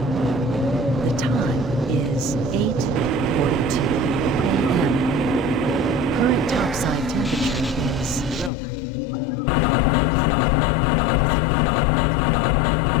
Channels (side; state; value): right; drops out; at 8.5 s